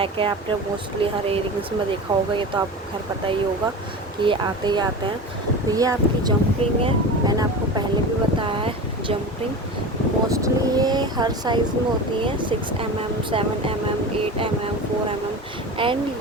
है, आपने मोस्टली हर एयरिंग्स में देखा होगा, ये तो आपको खैर पता ही होगा कि ये आते ही आते हैं। तो ये आपकी जंप रिंग है, मैंने आपको पहले भी बताया है। जंप रिंग मोस्टली ये हर साइज़ में होती है, 6 mm, 7 mm, 8 mm, 4 mm।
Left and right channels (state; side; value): normal; both; correlation 0.30